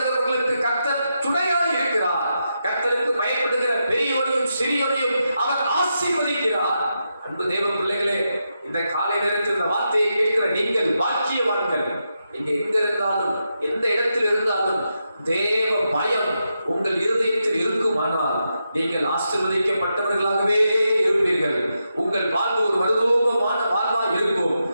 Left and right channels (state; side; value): inverted; both; correlation -0.86